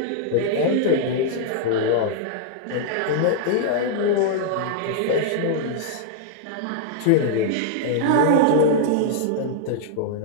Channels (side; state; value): both; different; correlation -0.01